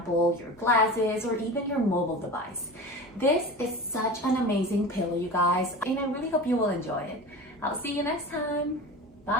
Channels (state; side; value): normal; both; correlation 0.32